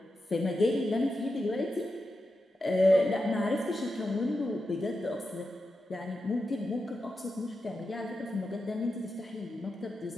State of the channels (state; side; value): normal; both; correlation 0.89